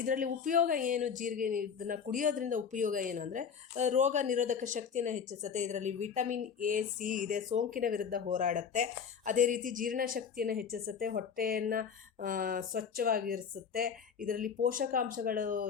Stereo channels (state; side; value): quieter; right; 6.8 dB